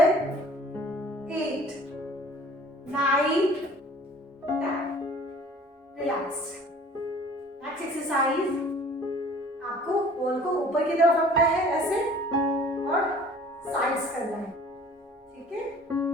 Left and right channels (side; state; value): both; normal; correlation 0.49